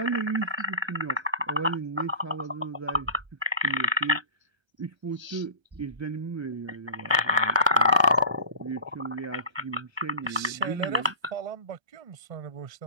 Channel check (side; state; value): left; late; 1.3 ms